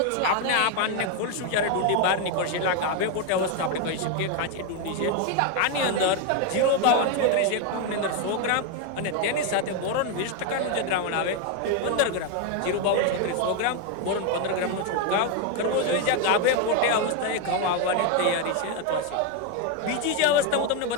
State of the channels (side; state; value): both; different; correlation 0.01